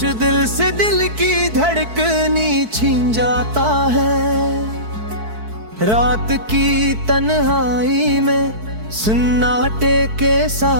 दिल से दिल की धड़कनी छीन जाता है। रात की तन्हाई में सन्नाटे के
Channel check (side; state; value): left; late; 4.6 ms